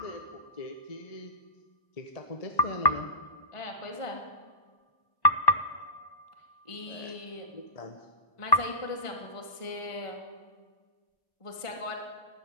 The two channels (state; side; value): late; right; 1.4 ms